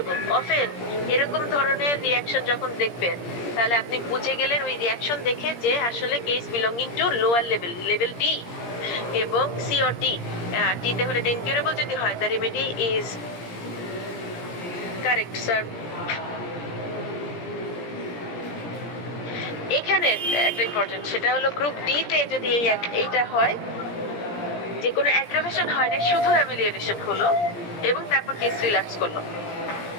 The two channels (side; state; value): right; late; 17 ms